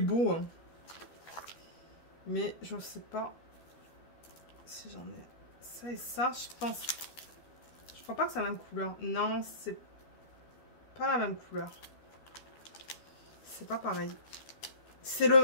hein. Mais je sais pas si j'en ai ça et ça, je pense. Je crois pas que c'est la même couleur. Non, c'est pas la même couleur. C'est pas pareil. C'est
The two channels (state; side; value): late; right; 13 ms